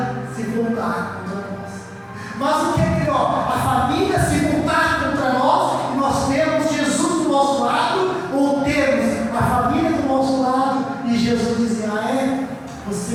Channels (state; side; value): identical; both; correlation 1.00